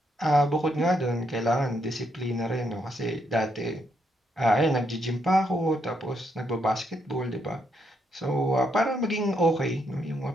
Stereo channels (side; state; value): both; normal; correlation 0.77